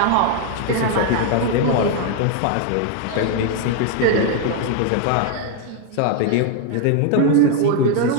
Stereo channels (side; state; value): both; different; correlation 0.00